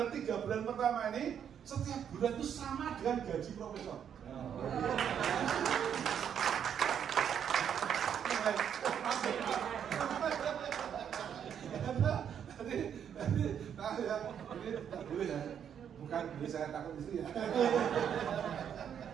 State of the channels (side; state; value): left; quieter; 8.6 dB